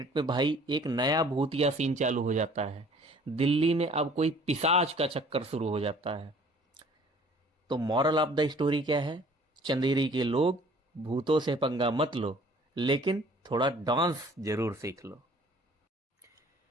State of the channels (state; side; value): normal; both; correlation 0.53